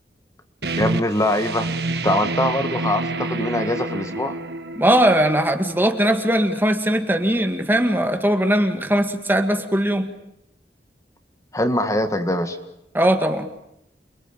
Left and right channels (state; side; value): normal; both; correlation 0.70